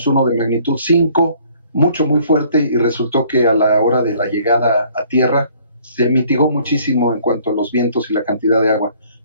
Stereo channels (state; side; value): inverted; both; correlation -0.59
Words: uno de magnitud 5, muy fuerte, y resultó que a la hora de la llegada a tierra se mitigó muchísimo en cuanto a los vientos y la cantidad de agua.